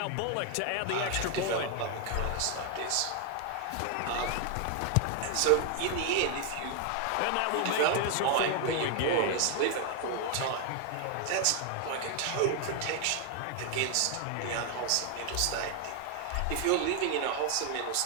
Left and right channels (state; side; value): different; both; correlation 0.01